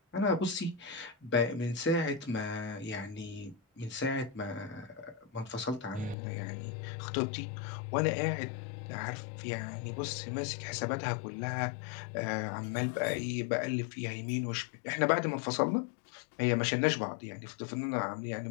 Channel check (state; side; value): drops out; right; at 6.2 s